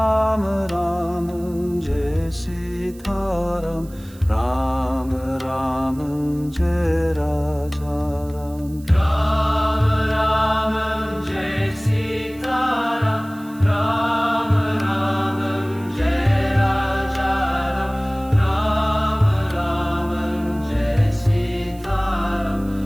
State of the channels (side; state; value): right; noise; hiss, 24 dB below the sound